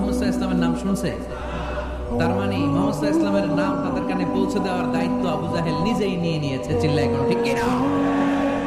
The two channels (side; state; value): both; identical; correlation 1.00